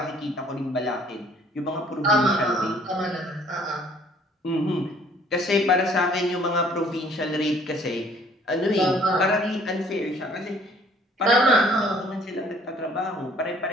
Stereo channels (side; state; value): both; normal; correlation 0.57